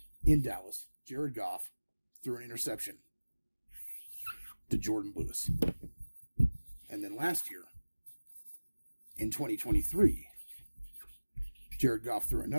in Dallas, Jared Goff threw an interception to Jordan Lewis. And then last year, in 2023, Jared Goff threw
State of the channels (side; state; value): both; inverted; correlation -1.00